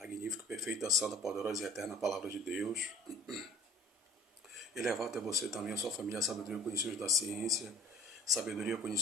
perfeita, santa, poderosa e eterna palavra de Deus. E levar até você também, a sua família, a sabedoria, o conhecimento da ciência, sabedoria,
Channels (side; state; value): both; normal; correlation 0.48